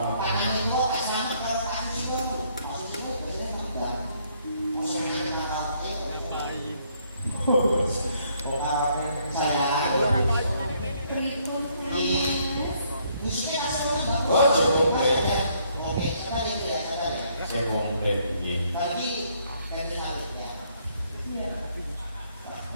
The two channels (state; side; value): inverted; both; correlation -0.68